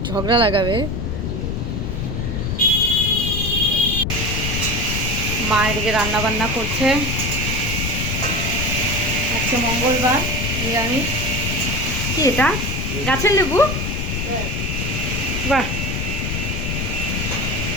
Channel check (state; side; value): noise; left; rumble, 2 dB below the sound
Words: ঝগড়া লাগাবে। মা এদিকে রান্না বান্না করছে। আজকে মঙ্গলবার, নিরামিষ। কি এটা? গাছের লেবু? বাহ।